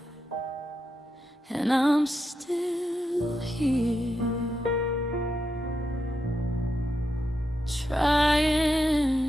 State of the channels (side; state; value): both; normal; correlation 0.85